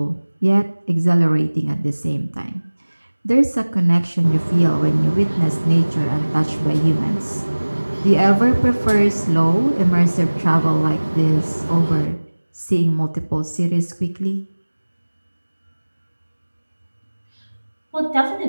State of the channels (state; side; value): inverted; both; correlation -1.00